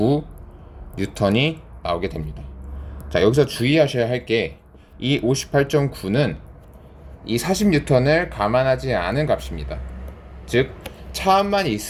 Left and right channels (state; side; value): identical; both; correlation 1.00